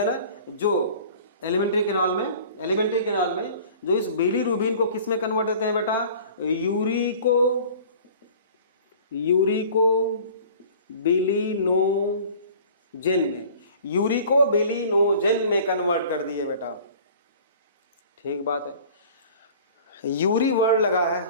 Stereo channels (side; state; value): both; inverted; correlation -0.46